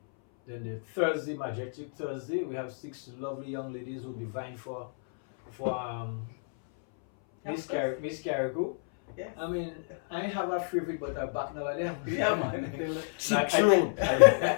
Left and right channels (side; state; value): right; silent; 58 dB below the other